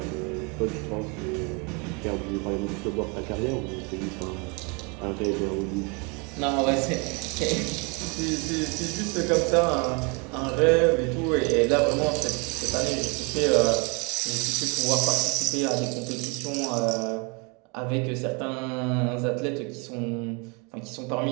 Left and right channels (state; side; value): quieter; left; 32.0 dB